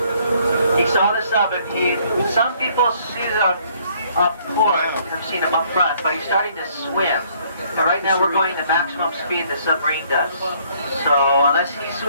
he saw this up, and some people see it up port, have seen him up front, but he's starting to swim. And right now we're going the maximum speed the submarine does. So unless he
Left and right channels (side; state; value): both; inverted; correlation -0.63